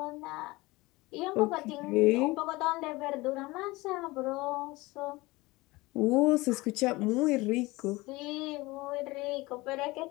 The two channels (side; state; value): right; quieter; 21.5 dB